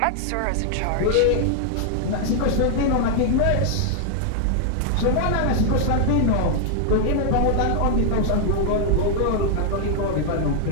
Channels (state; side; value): different; both; correlation 0.00